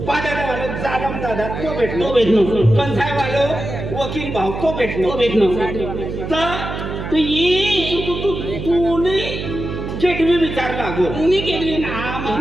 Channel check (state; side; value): noise; right; hum, 6 dB below the sound